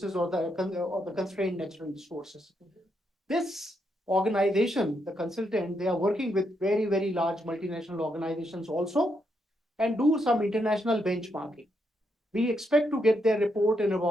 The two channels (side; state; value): both; normal; correlation 0.79